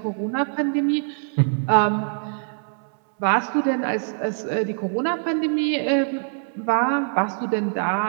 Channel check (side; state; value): left; silent; 63 dB below the other